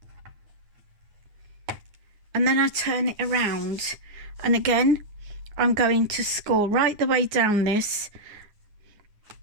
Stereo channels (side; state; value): left; late; 9.6 ms